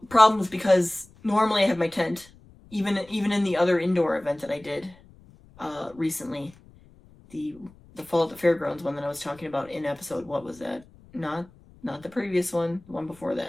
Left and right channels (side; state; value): left; noise; rumble, 25 dB below the sound